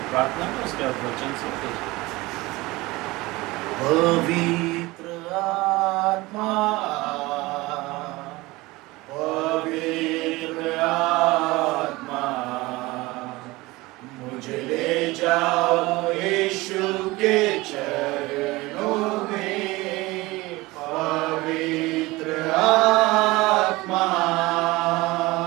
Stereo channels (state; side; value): quieter; left; 21.2 dB